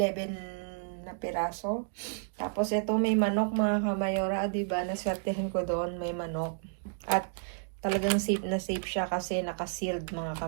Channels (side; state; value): left; silent; digital silence